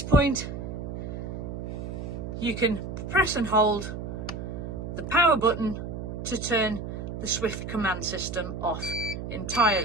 point you can press and hold the power button to turn the Swift command system off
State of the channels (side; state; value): right; noise; hum, 6 dB below the sound